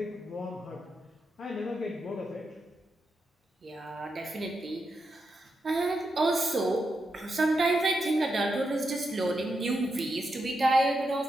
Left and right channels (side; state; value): both; normal; correlation 0.85